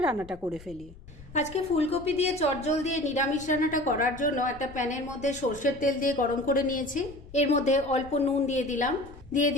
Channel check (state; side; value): noise; left; rumble, 19 dB below the sound